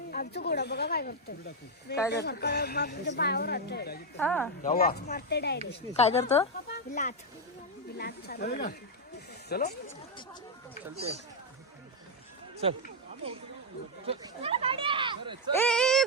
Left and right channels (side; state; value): both; normal; correlation 0.02